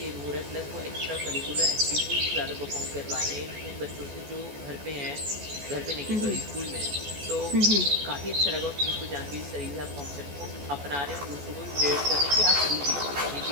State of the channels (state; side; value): late; left; 14 ms